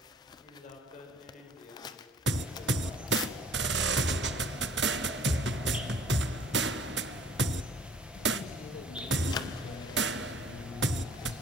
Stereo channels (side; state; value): both; normal; correlation 0.54